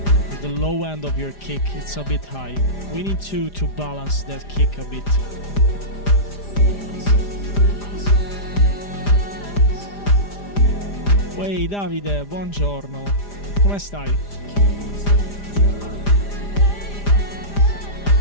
The low end of your kick it's a bit high. We need to balance that kick a bit. Ehi Davide, buongiorno. Come stai?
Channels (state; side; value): late; right; 4.9 ms